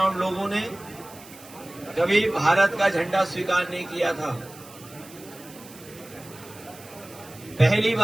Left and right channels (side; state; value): right; noise; hiss, 20 dB below the sound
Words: लोगों ने कभी भारत का झंडा स्वीकार नहीं किया था। पहली